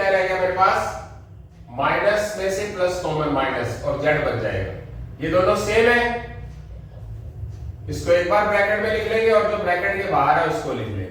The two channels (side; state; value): both; identical; correlation 1.00